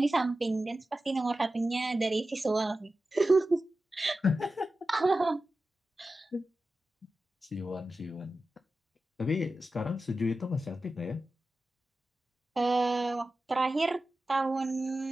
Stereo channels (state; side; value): normal; both; correlation 0.93